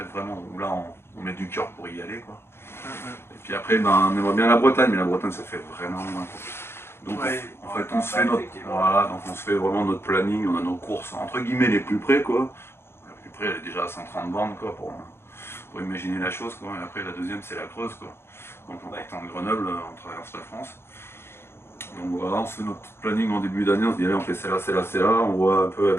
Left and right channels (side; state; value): right; late; 0.12 ms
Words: vraiment, où là on met du cœur pour y aller, quoi. Et puis après, on aimerait bien la Bretagne, mais la Bretagne ça fait vraiment loin, quoi. Donc en fait on se fait donc on se fait vraiment notre planning, on a nos courses entre guillemets les plus près, quoi. La plus près elle est déjà à 130 bornes, quoi, pour imaginer la chose, quoi. Et après la deuxième c'est la Creuse, quoi. Donc en partant de Grenoble, on traverse la France. Donc voilà, on se fait notre petit planning en début d'année, on se dit allez on fait celle-là, celle-là, celle-là, on voit un peu